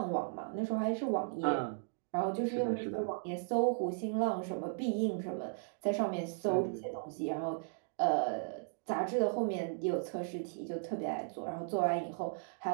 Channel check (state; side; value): silent; left; digital silence